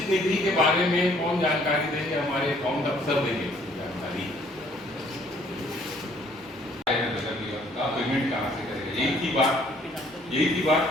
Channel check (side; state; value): both; normal; correlation 0.61